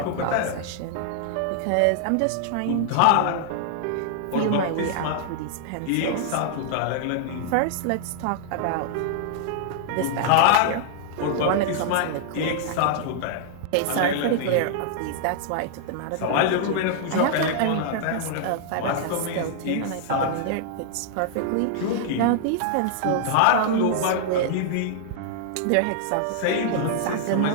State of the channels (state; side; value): different; both; correlation -0.01